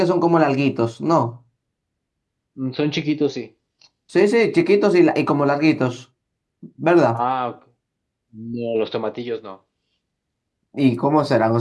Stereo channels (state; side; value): identical; both; correlation 1.00